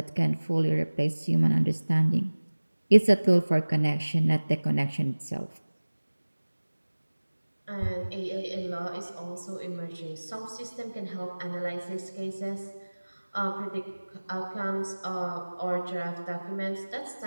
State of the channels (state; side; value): inverted; both; correlation -1.00